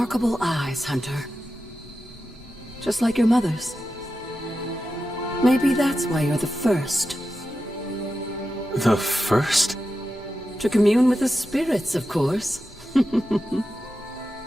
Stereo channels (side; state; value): both; normal; correlation 0.91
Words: eyes, Hunter. Just like your mother's. Maybe that's why you're the first. The first? To commune with the spirits, of course.